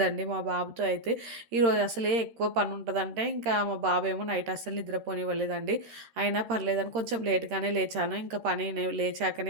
మా బాబుతో అయితే. ఈరోజు అసలే ఎక్కువ పని ఉంటుందంటే ఇంకా మా బాబు ఏమో నైట్ అస్సలు నిద్రపోనివ్వలేదండి. అయినా పర్లేదని కొంచెం లేట్గానే లేచాను. ఇంకా పని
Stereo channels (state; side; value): late; left; 13 ms